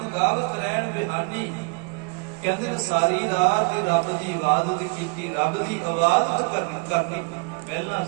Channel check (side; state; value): left; quieter; 34.7 dB